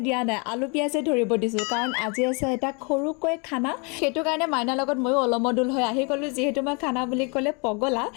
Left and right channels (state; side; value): quieter; right; 33.2 dB